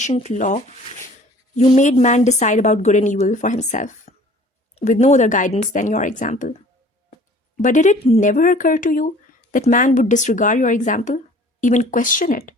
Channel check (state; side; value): normal; both; correlation 0.50